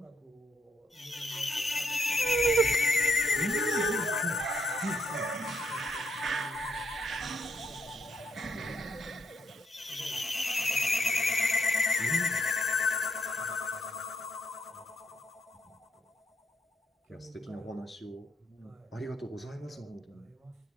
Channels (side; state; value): both; normal; correlation 0.77